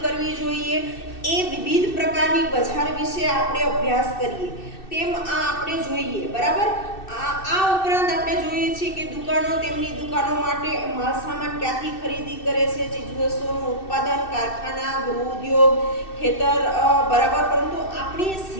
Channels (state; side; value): late; right; 2.6 ms